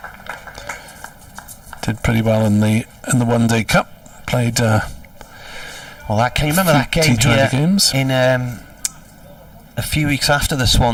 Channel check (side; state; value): both; identical; correlation 1.00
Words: Did pretty well in the One Day Cup. Played. Can you remember that game here games? In a few weeks after the